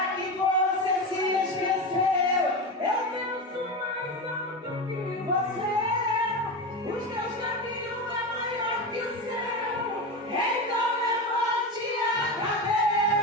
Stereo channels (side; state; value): both; normal; correlation 0.20